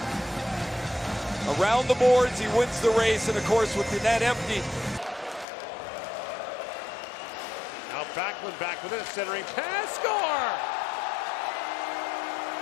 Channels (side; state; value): right; drops out; at 5.5 s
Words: around the boards. He wins the race, and of course with the net empty. Now Backlund back with it, centering pass, score!